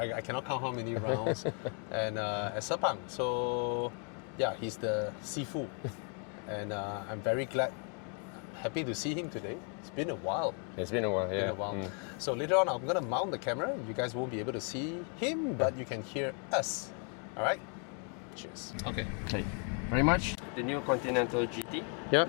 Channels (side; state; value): right; quieter; 40.0 dB